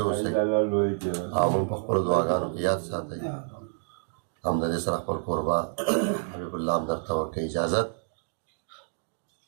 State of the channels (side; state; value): left; silent; digital silence